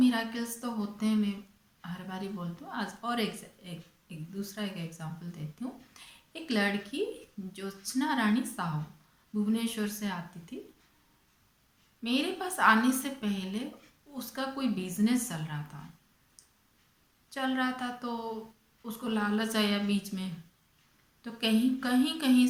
तो होते हैं, मैं हर बारी बोलती हूँ। आज और एक दूसरा एक एग्जांपल देती हूँ। एक लड़की ज्योत्सना रानी साहू भुवनेश्वर से आती थी। मेरे पास आने से पहले उसका कोई बिजनेस चल रहा था तो उसको लालच आया बीच में, तो कहीं कहीं कहीं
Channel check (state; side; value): identical; both; correlation 1.00